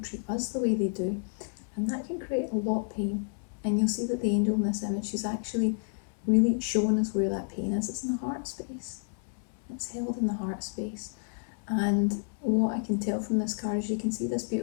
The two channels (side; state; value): right; silent; 58 dB below the other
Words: us the way they do. And that can create a lot of pain. And you'll see that the angel in this image, she's actually really showing us where that pain is. It's in the heart space. It's held in the heart space. And what I can tell from this card is you can see this